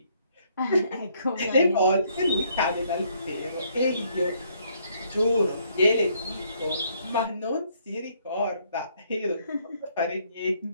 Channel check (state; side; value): inverted; both; correlation -0.68